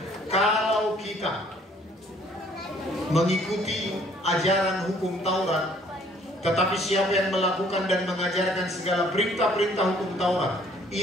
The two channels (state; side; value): normal; both; correlation 0.60